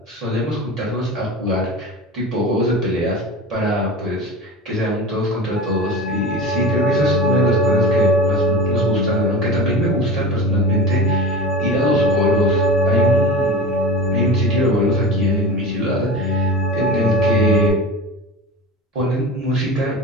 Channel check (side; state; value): both; normal; correlation 0.30